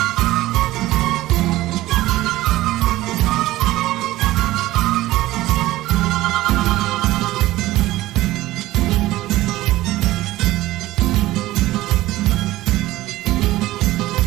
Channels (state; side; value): quieter; left; 16.8 dB